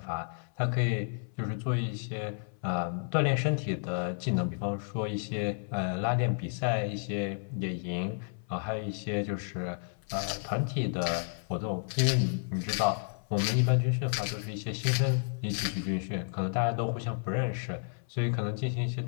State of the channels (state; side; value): silent; right; 56 dB below the other